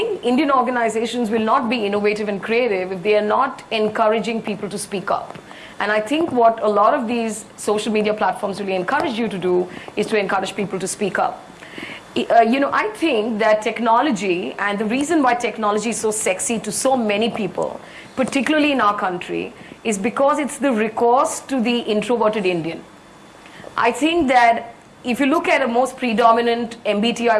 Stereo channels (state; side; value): identical; both; correlation 1.00